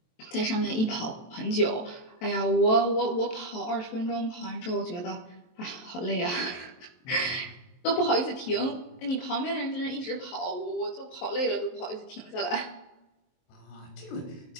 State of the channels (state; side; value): late; right; 23 ms